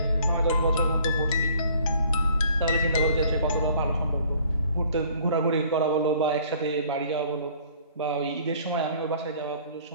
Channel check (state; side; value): inverted; both; correlation -0.56